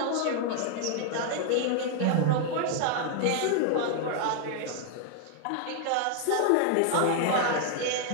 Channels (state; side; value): different; both; correlation 0.00